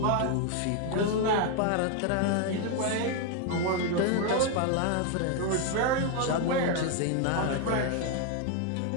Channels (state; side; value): different; both; correlation 0.01